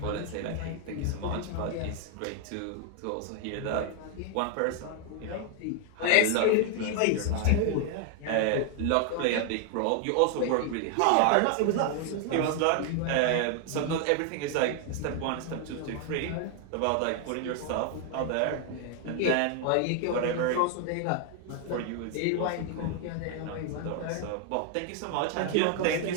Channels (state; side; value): different; both; correlation 0.00